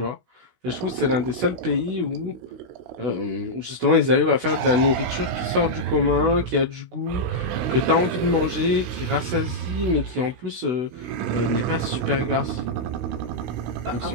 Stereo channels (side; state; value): left; late; 16 ms